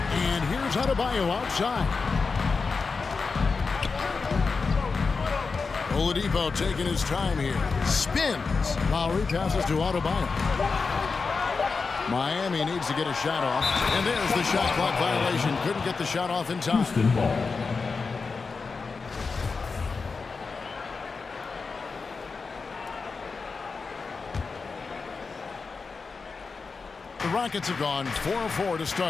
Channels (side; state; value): right; quieter; 4.6 dB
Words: here's Adebayo outside. Oladipo taking his time here. Spins. Lowry passes to Adebayo. Miami needs to get a shot off. And there's the shot clock violation. Couldn't get the shot off in time. The Rockets have gone 4-4 to